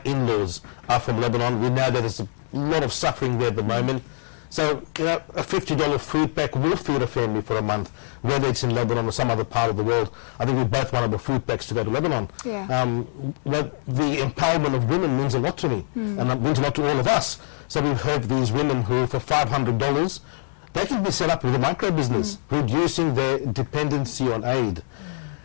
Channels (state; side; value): silent; right; digital silence